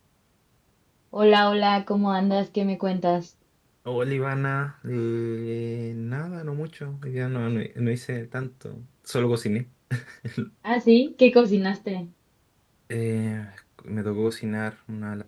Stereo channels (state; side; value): identical; both; correlation 1.00